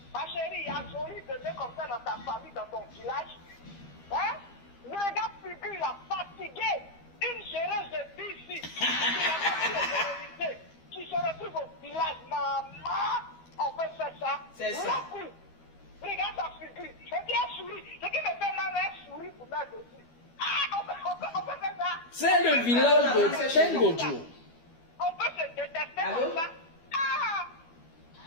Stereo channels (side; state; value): right; late; 12 ms